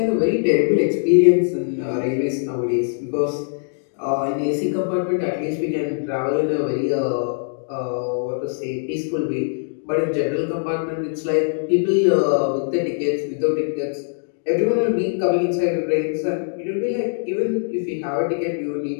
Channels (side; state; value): right; silent; digital silence